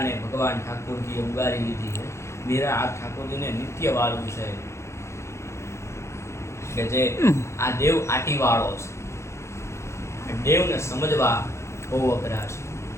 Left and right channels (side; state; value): right; late; 0.13 ms